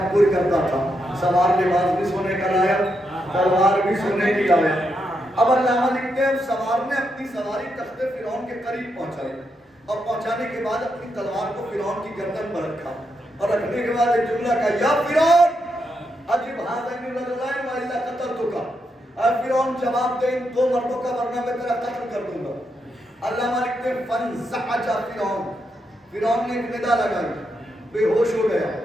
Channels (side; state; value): both; normal; correlation 0.82